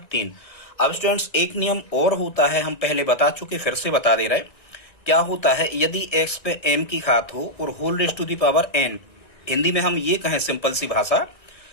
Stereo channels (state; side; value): late; right; 1.9 ms